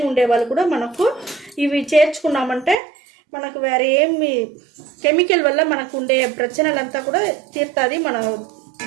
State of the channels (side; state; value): left; drops out; at 2.8 s